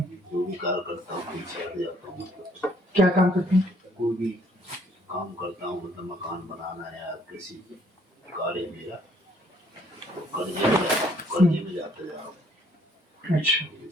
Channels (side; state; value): both; normal; correlation 0.64